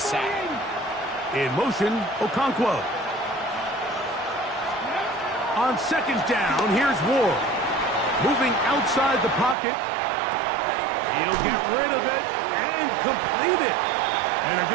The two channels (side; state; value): left; drops out; at 9.6 s